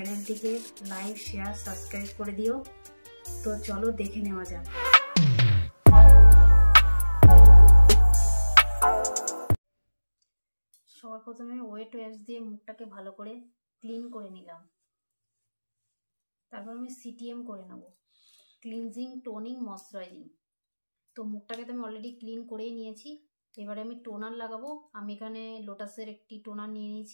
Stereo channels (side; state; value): both; inverted; correlation -1.00